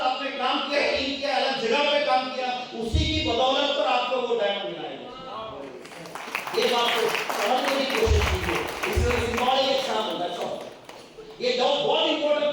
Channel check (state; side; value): identical; both; correlation 1.00